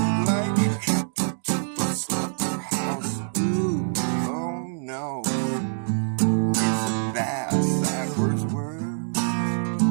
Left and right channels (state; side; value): silent; left; digital silence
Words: like a cattle to a slaughterhouse. Ooh, oh no, it's a backwards world.